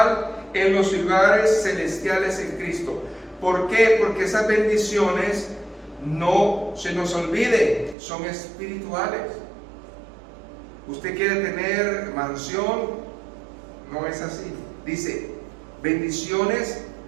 en los lugares celestiales en Cristo. ¿Por qué? Porque esas bendiciones, no se nos olvide, son espirituales. Usted quiere tener mansión, no es así. Dice, bendiciones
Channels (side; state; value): left; drops out; at 8.0 s